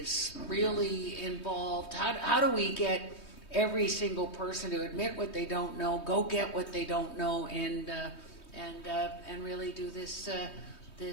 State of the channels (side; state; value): right; late; 3.2 ms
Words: really involved. How do we get every single person to admit what they don't know, go get what they don't know, and really do this